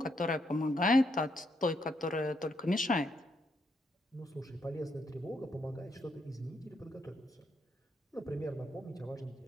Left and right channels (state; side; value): normal; both; correlation 0.77